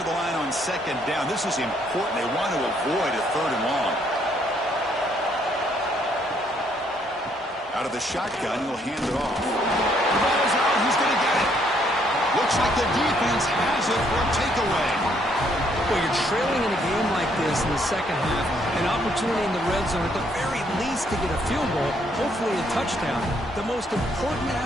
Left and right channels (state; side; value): normal; both; correlation 0.69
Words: the line on 2nd down. This is important. They want to avoid a 3rd and long. Out of the shotgun, he'll hand it off. The ball's out. He's going to get it. Looks like the defense has it for a takeaway. Well, you're trailing in a game like this in the second half, an opportunity in the red zone at the very least to get a field goal, hopefully a touchdown. The most important